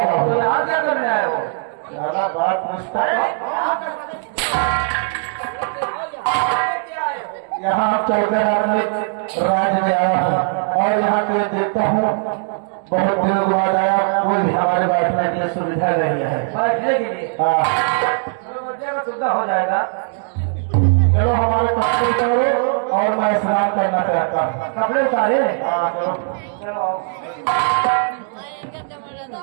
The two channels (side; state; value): left; silent; 61 dB below the other